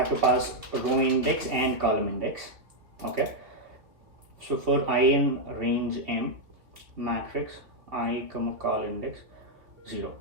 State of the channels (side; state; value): left; late; 2.5 ms